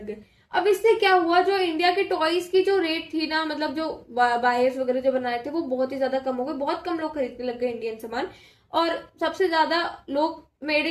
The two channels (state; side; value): identical; both; correlation 1.00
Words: गए। अब इससे क्या हुआ, जो इंडिया के टॉयज की जो रेट थी ना, मतलब जो बायर्स वगैरह जो बनाए थे वो बहुत ही ज्यादा कम हो गए, बहुत कम लोग खरीदने लग गए इंडियन सामान, और सबसे ज्यादा लोग मेड